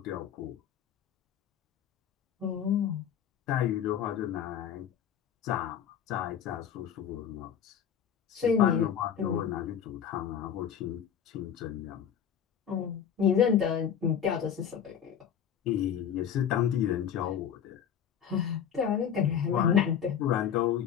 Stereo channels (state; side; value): quieter; right; 8.6 dB